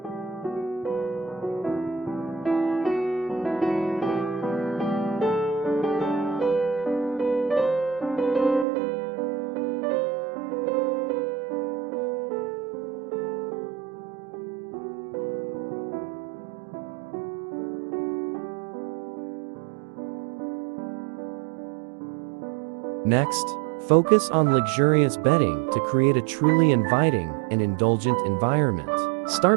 Next, focus on luxurious bedding to create a truly inviting and indulgent environment.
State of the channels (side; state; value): left; drops out; at 8.7 s